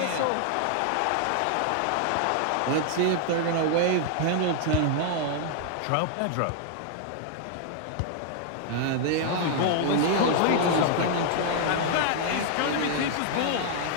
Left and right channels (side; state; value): both; different; correlation 0.00